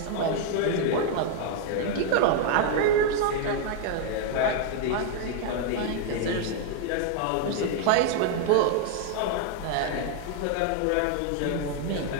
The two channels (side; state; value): both; different; correlation 0.00